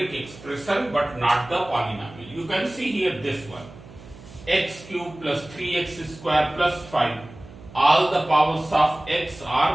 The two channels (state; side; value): noise; right; hum, 19 dB below the sound